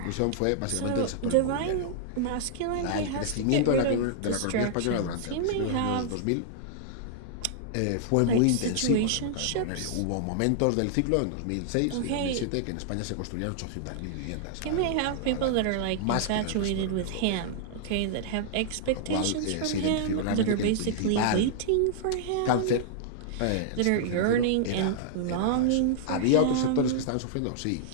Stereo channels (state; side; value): different; both; correlation -0.01